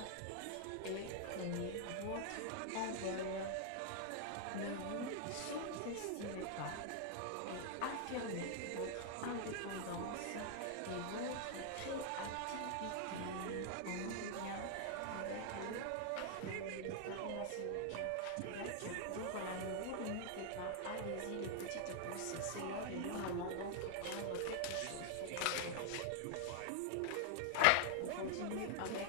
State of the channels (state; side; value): different; both; correlation 0.00